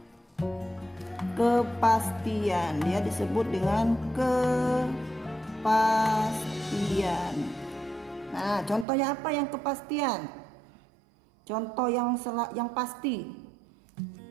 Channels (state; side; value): drops out; left; at 8.8 s